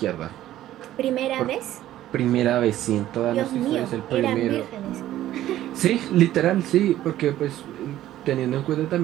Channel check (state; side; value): quieter; left; 13.5 dB